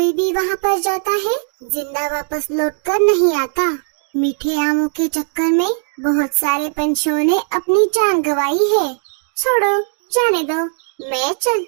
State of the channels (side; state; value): left; silent; 67 dB below the other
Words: भी वहाँ पर जाता है, जिंदा वापस लौटकर नहीं आता। मीठे आमों के चक्कर में बहुत सारे पंछियों ने अपनी जान गंवाई है। छोड़ो, जाने दो, मैं